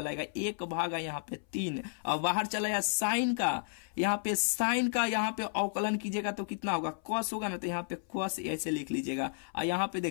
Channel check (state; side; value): silent; right; 56 dB below the other